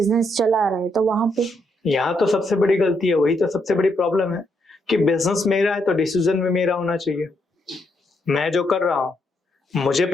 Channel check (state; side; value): normal; both; correlation 0.77